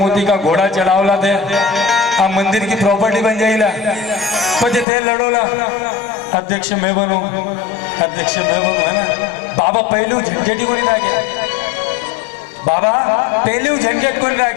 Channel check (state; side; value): drops out; right; at 4.9 s